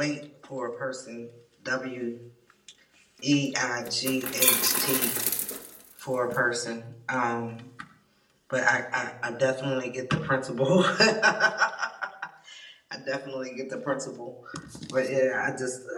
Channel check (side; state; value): both; identical; correlation 1.00